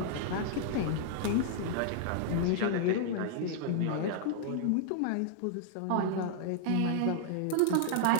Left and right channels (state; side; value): different; both; correlation -0.01